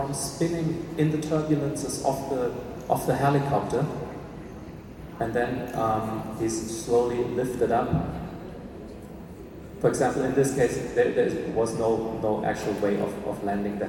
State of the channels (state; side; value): identical; both; correlation 1.00